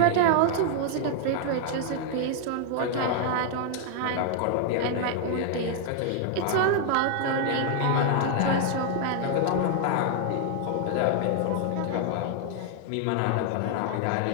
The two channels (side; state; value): both; different; correlation 0.00